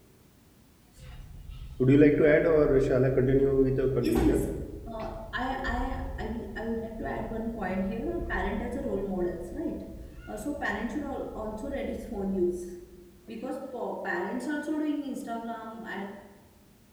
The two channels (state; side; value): identical; both; correlation 1.00